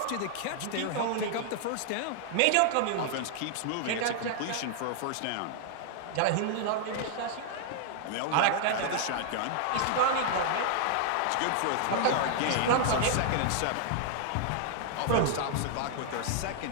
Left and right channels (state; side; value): different; both; correlation 0.00